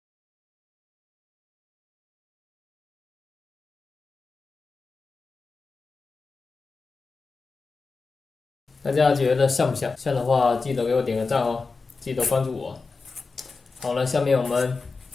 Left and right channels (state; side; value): quieter; right; 4.3 dB